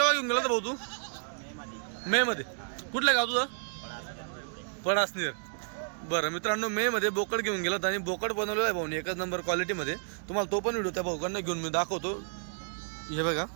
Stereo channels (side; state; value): left; silent; digital silence